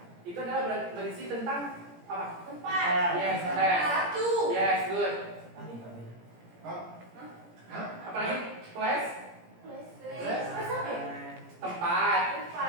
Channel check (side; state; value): left; late; 17 ms